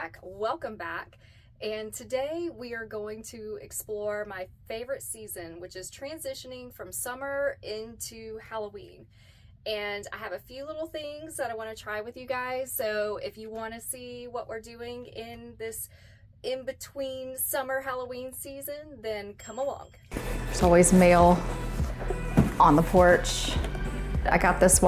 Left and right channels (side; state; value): both; identical; correlation 1.00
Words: welcome back. And today we are going to explore my favorite season, which is transitioning from summer into Halloween. And I have a few little things that I want to try with you guys, so if you want to see what we're doing in this in-between summer Halloween season, then come along. There's always mail on the porch. I got this